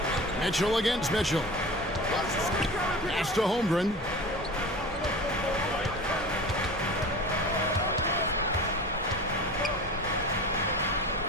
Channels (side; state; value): both; normal; correlation 0.35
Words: Mitchell against Mitchell. Pass to Holmgren.